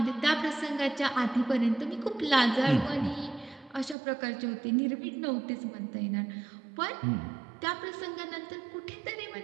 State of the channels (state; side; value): drops out; left; at 4.0 s